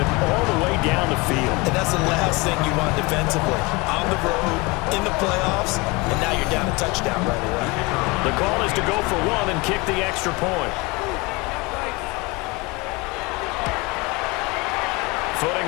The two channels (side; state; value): right; quieter; 24.8 dB